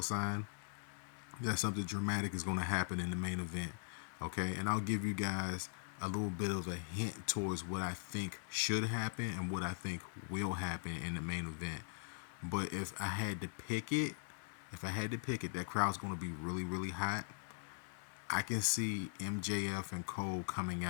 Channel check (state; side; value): silent; right; digital silence